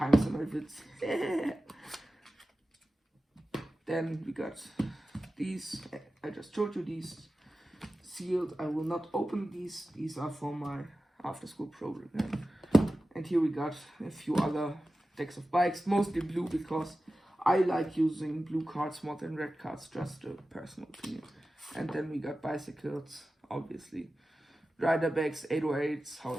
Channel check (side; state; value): both; normal; correlation 0.94